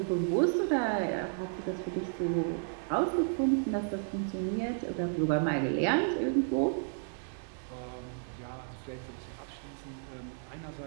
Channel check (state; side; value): silent; left; digital silence